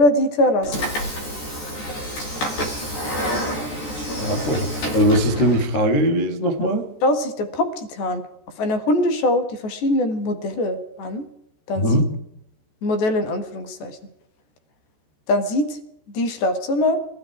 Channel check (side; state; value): right; late; 14 ms